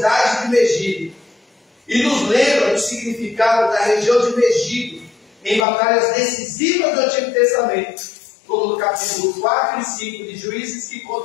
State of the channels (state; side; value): drops out; right; at 5.7 s